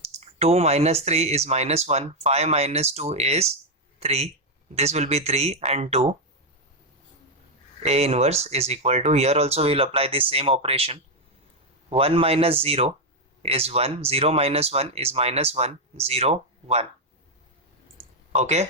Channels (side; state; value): both; normal; correlation 0.02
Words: 2 minus 3 is minus 1, 5 minus 2 is 3. This will be 3 and 2. A inverse is equal to, here also we will apply the same operation. 1 minus 0 is 1, 0 minus 1 is minus 1, 0, 1. Okay,